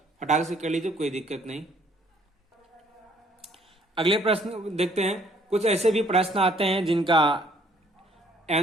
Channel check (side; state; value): both; normal; correlation 0.62